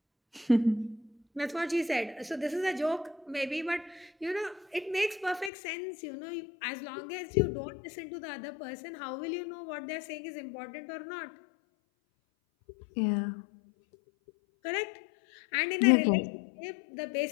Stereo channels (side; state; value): right; drops out; at 5.5 s